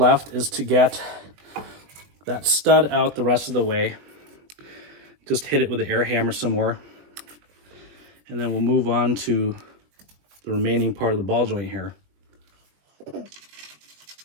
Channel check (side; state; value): left; late; 20 ms